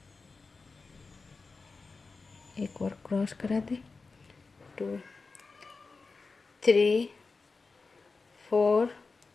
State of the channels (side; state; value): right; quieter; 4.2 dB